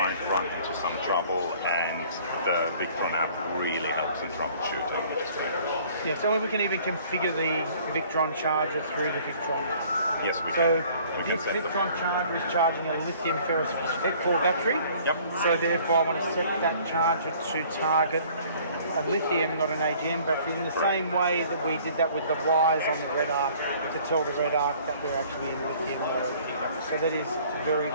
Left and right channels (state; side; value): inverted; both; correlation -0.54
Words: run into some trouble, and the Victron app really helps in troubleshooting, which is great. Yeah, so we can even configure the Victron charger through the Victron. Yes, we can. So this Victron charger is charging a lithium phosphate-4 battery. Yep. So therefore I want to set that charger to target a lithium, not an AGM battery, in the same way that we did that with the wires on the red arc to tell the red arc that we're actually in lithium mode. So that is very,